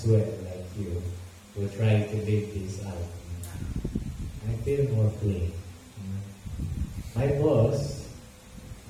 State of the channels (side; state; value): both; identical; correlation 1.00